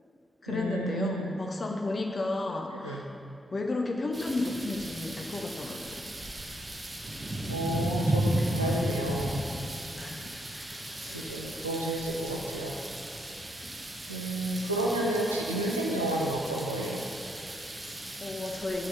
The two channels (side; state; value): both; normal; correlation 0.72